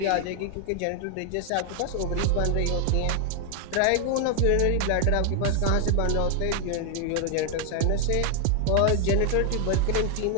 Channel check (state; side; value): different; both; correlation 0.00